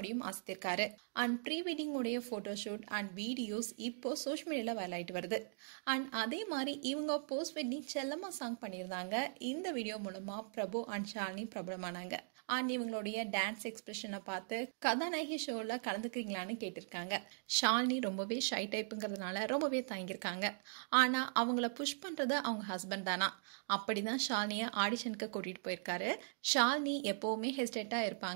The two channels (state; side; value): silent; left; digital silence